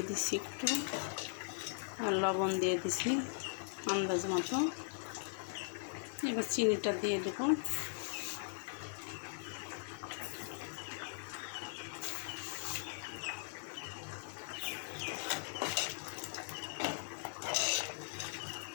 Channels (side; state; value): right; silent; digital silence